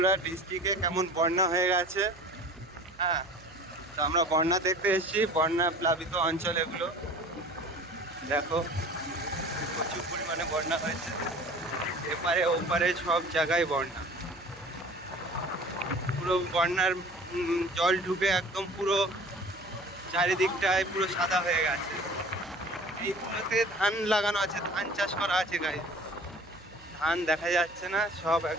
ডিস্ট্রিক্টে কেমন বন্যা হয়ে গেছে। হ্যাঁ, তো আমরা বন্যা দেখতে এসেছি, বন্যা প্লাবিত অঞ্চল এগুলো। দেখো প্রচুর পরিমাণে বন্যা হয়েছে, এপারে ওপারে সব জায়গায় বন্যা। পুরো বন্যার জল ঢুকে একদম পুরো চারিদিকটায় পুরো সাদা হয়ে গেছে। এইগুলোতে ধান লাগানো আছে, ধান চাষ করা আছে গাইস। ধান দেখা যাচ্ছে না, সব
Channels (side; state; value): right; noise; hum, 23 dB below the sound